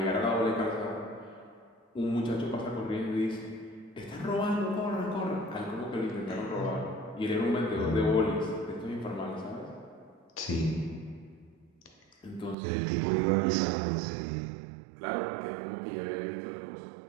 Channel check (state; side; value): drops out; left; at 12.6 s